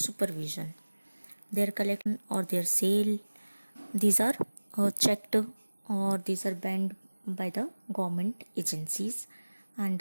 Their collection or their sale, these are checked or these are banned by the government agencies, and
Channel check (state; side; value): inverted; both; correlation -1.00